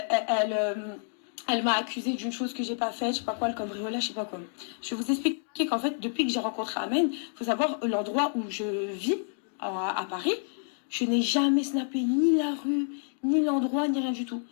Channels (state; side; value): silent; right; digital silence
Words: m'a accusé d'une chose que j'ai pas faite, je sais pas quoi, le cambriolage, je sais pas quoi. Je vais vous expliquer qu'en fait, depuis que j'ai rencontré Ahmed, faut savoir l'endroit où je vis à Paris, je n'ai jamais snappé ni la rue, ni l'endroit, ni rien du tout.